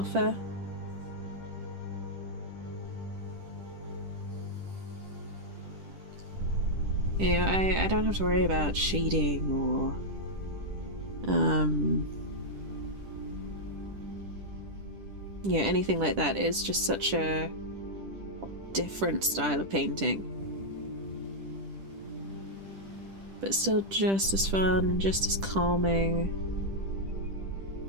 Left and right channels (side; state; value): left; late; 10 ms